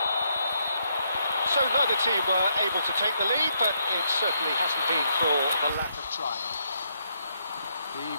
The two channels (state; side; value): inverted; both; correlation -0.76